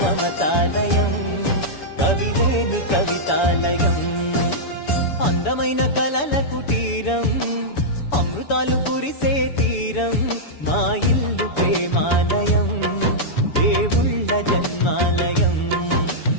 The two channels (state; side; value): late; right; 7.0 ms